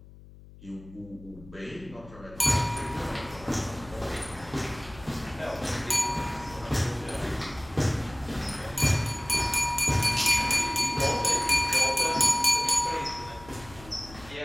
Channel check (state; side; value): noise; left; hum, 20 dB below the sound